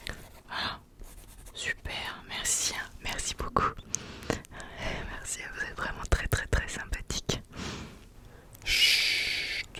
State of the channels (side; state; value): both; identical; correlation 1.00